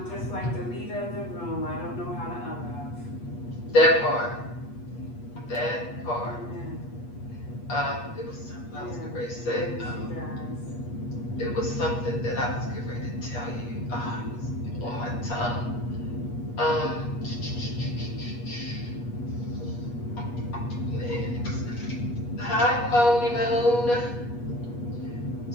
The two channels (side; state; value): right; late; 8.3 ms